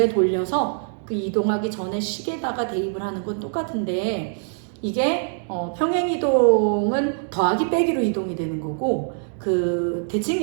그 이동하기 전에 식에다가 대입을 하는 건 똑같은데 이게 평행 이동은 더하기 빼기로 이동이 되는 거고 그 대칭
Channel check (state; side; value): silent; left; digital silence